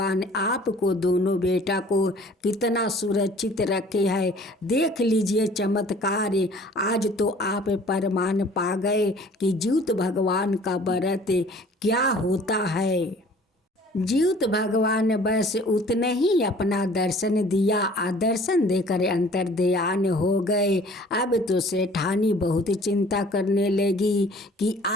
आपको दोनों बेटा को कितना सुरक्षित रखे है। देख लीजिए चमत्कार, आज तो आप प्रमाण पा गए कि जीउत भगवान का व्रत क्या होता है। जीउत भगवान बस उतने ही अपना दर्शन दिया और दर्शन देकर अंतर्ध्यान हो गए। अब तो सेठानी बहुत चिंता करने लगी कि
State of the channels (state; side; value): normal; both; correlation 0.51